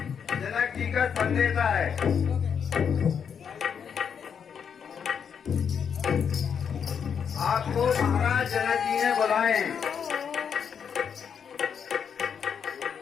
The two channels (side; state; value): right; quieter; 7.2 dB